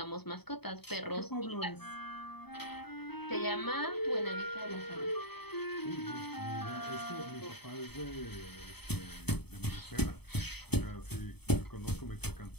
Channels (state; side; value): late; right; 0.98 ms